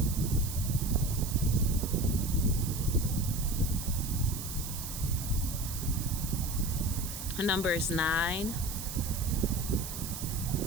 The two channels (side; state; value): right; noise; hiss, 8 dB below the sound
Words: Her number is 9.